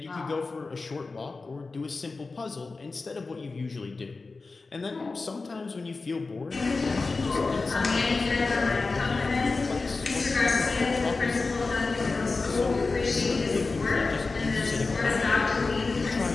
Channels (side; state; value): right; quieter; 3.9 dB